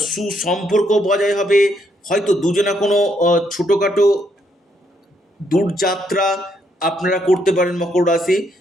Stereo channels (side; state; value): both; normal; correlation 0.74